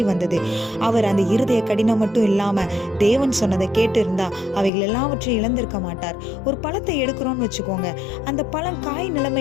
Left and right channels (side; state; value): right; drops out; at 4.7 s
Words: வந்தது. அவர் அந்த இருதய கடினம் மட்டும் இல்லாம தேவன் சொன்னதை கேட்டு இருந்தா அவைகள் எல்லாவற்றையும் இழந்திருக்க மாட்டார். ஒரு பழத்தை எடுக்கிறோம்னு வச்சுக்கோங்க, அந்த பழம் காய்